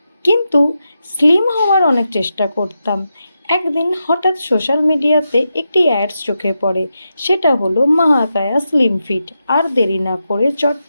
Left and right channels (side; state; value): both; inverted; correlation -0.88